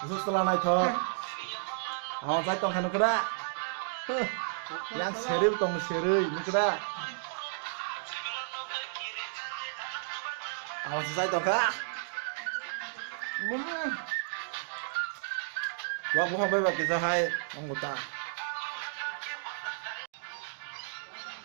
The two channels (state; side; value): silent; left; digital silence